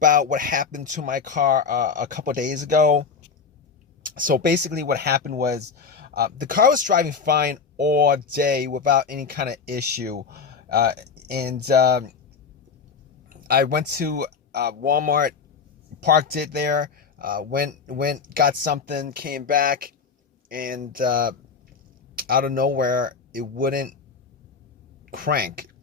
what happened to my car a couple days ago. So basically, what happened was the car was driving fine all day without any kind of issue, uh, and I went to Walmart, parked it there, went, got something, came back, and out of nowhere, it wouldn't crank.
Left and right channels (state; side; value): quieter; right; 5.6 dB